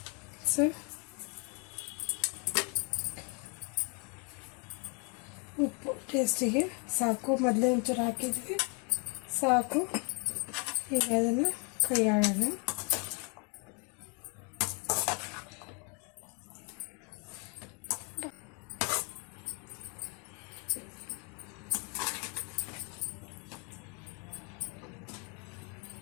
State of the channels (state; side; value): quieter; right; 34.7 dB